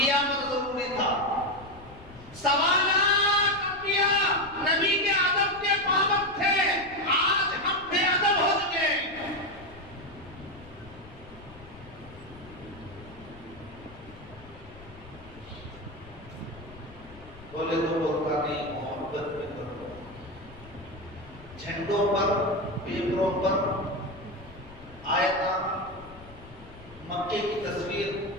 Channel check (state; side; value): noise; left; rumble, 19 dB below the sound